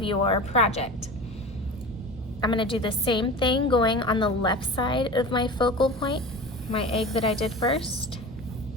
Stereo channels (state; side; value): normal; both; correlation 0.34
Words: your project. I'm going to do the same thing going on the left side of my focal point, my egg that I did first.